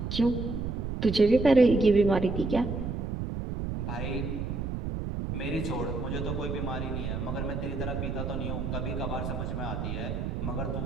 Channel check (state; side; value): noise; right; rumble, 3 dB below the sound